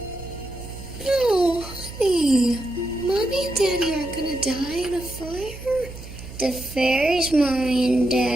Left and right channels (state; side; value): noise; right; hum, 14 dB below the sound